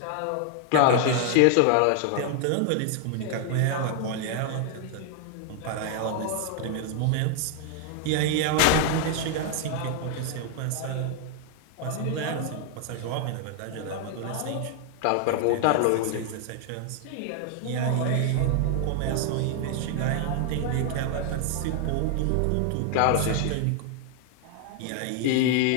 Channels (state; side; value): different; both; correlation 0.00